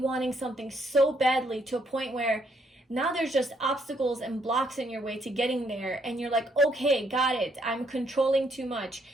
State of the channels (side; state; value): both; normal; correlation 0.71